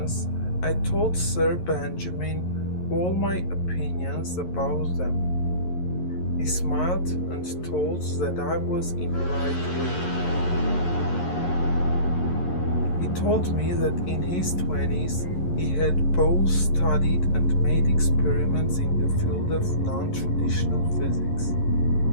I told Sir Benjamin all my opinions about them. He smiled and told that I was in the right way. He told me that in his 20s he had both studied and made experiments in the field of non-traditional physics.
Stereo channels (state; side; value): late; right; 11 ms